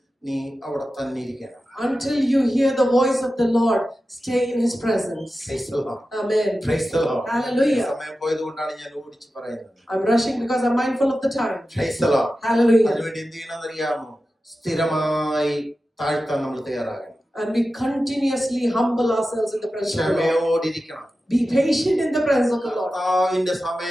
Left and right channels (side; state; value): both; normal; correlation 0.93